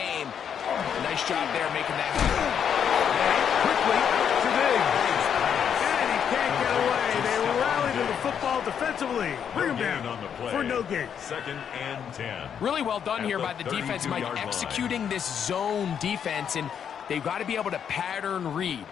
Nice job there making that happen. Quickly to Diggs. And he can't get away. They rallied to the football defensively. Bring him down for no gain. Second and 10. Really well done here by the defense, Mike, executing this zone defense, and they've got to be able to pattern read.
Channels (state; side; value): quieter; right; 8.1 dB